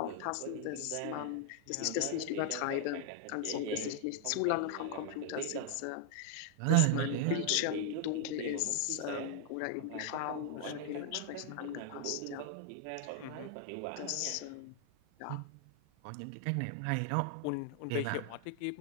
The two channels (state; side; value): different; both; correlation 0.00